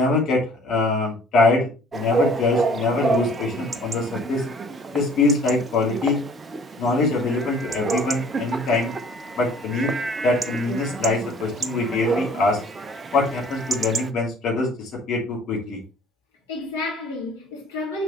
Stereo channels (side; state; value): both; normal; correlation 0.53